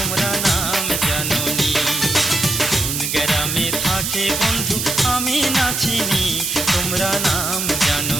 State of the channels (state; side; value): noise; right; hiss, 2 dB below the sound